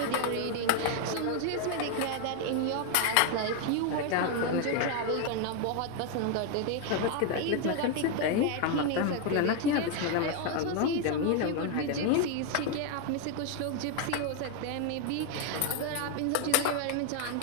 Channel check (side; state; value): both; different; correlation 0.01